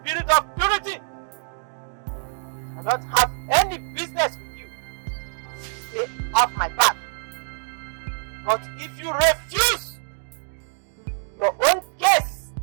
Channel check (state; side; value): silent; left; digital silence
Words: of purity. I don't have any business with you. Stay off my back. But if you refuse, your own case